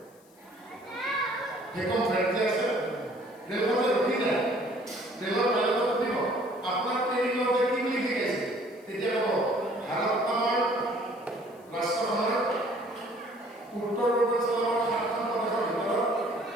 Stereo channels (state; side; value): noise; left; hiss, 30 dB below the sound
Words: ভেকুৱাম ফ্ৰেড যে আছে ৰেলখন যে ৰখি যায়, ৰেলৰ পাইলটক সুধিব আপোনাৰ ট্ৰেইনিঙতে কি বুলি শিকাইছে, তেতিয়া ক'ব ভাৰত আমাৰ ৰাষ্ট্ৰখনৰ উত্তৰ পূৰ্বাঞ্চলৰ ৭খন প্ৰদেশৰ ভিতৰত